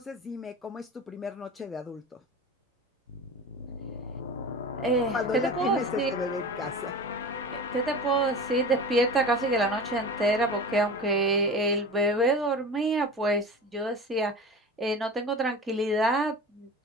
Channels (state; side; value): normal; both; correlation 0.33